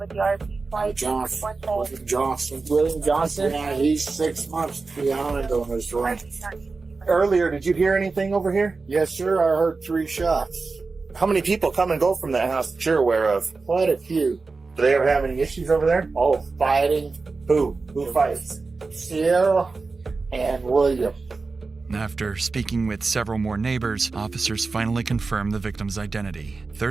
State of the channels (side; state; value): left; quieter; 4.0 dB